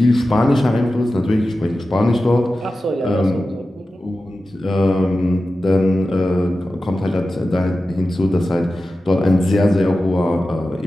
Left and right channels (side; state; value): both; normal; correlation 0.93